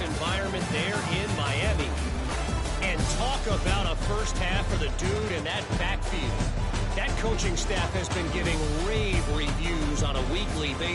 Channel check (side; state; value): both; identical; correlation 1.00